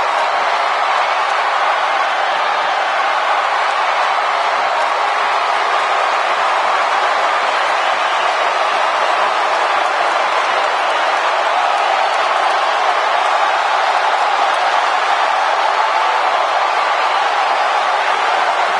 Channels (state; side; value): identical; both; correlation 1.00